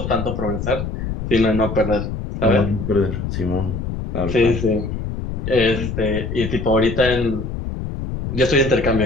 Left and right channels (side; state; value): left; noise; rumble, 5 dB below the sound